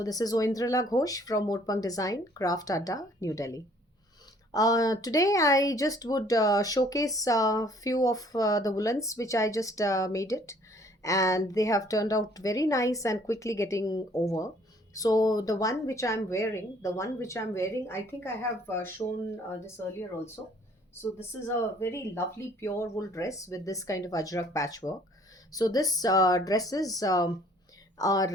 this is Oindrala Ghosh from Moorpang Design, Craft Adda, New Delhi. Today I just would showcase a few of the woolens which I just made it, and they have turned out very nice and quickly getting over. So the one which I'm wearing, I think I have shown this earlier also. So this is a very lovely pure wool dress with this kind of ajrak patchwork. So this dresses are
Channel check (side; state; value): both; normal; correlation 0.58